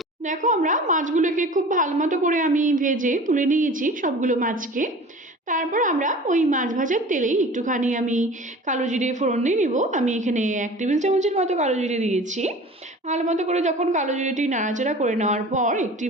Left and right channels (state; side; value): normal; both; correlation 0.41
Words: দেখো আমরা মাছগুলোকে খুব ভালো মতো করে আমি ভেজে তুলে নিয়েছি সবগুলো মাছকে। তারপর আমরা ওই মাছ ভাজার তেলেই একটুখানি আমি কালো জিরে ফোড়ন দিয়ে নিব। আমি এখানে 1 টেবিল চামচের মতো কালো জিরে দিয়েছি। ভালো মতো করে যখন কালো জিরেটি নাড়াচাড়া করে নেওয়ার পর একটি